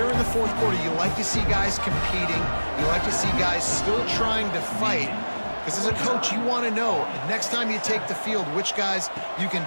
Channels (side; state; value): both; inverted; correlation -1.00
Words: in the fourth quarter, you like to see guys competing. You like to see guys still trying to fight. Because as a coach, you want to know, next time you take the field, which guys you can